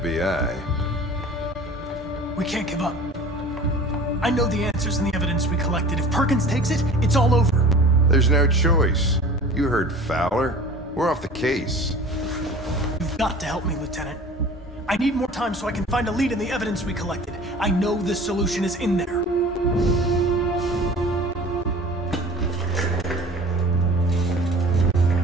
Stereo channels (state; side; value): normal; both; correlation 0.43